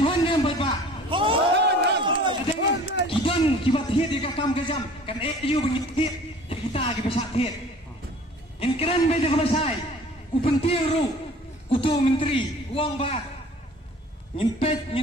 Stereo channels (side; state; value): both; normal; correlation 0.48